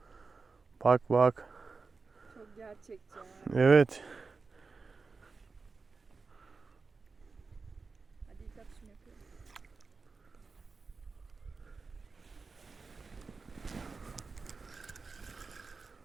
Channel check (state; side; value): quieter; left; 4.4 dB